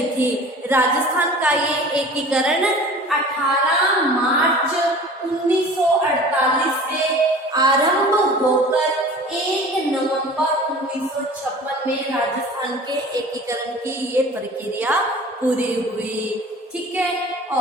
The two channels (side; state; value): both; normal; correlation 0.42